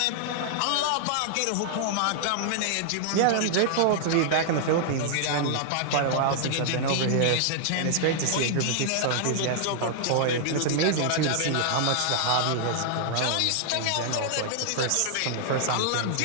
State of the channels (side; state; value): both; different; correlation -0.01